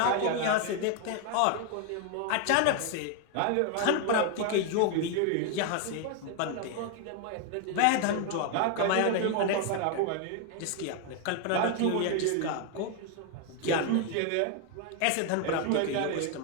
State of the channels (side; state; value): both; different; correlation 0.01